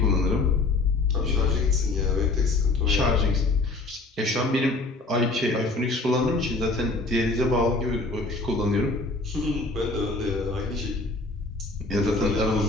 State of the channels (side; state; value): right; quieter; 3.3 dB